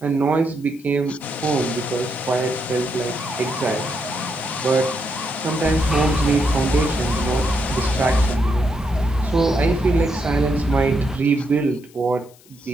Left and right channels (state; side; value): noise; left; hiss, 27 dB below the sound